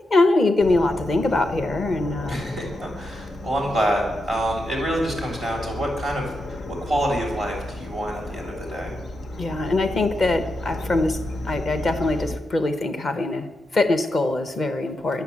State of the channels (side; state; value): both; normal; correlation 0.86